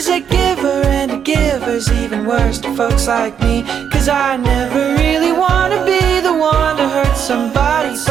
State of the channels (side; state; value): left; quieter; 8.0 dB